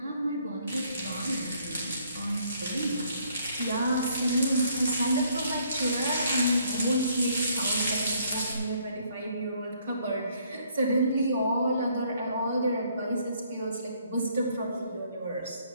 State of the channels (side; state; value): both; inverted; correlation -0.66